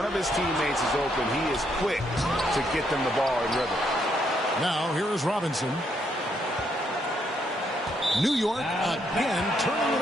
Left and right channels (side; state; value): both; normal; correlation 0.74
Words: of his teammates is open, he is quick to get them the ball in rhythm. Now here is Robinson. New York again turning it